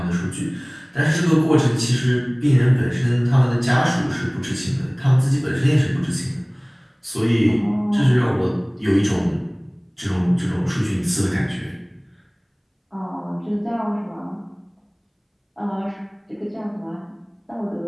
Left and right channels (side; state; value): both; identical; correlation 1.00